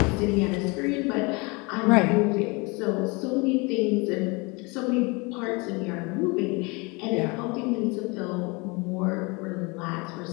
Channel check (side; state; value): right; quieter; 27.8 dB